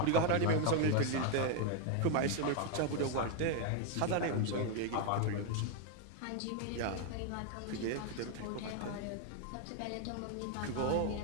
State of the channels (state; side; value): different; both; correlation 0.01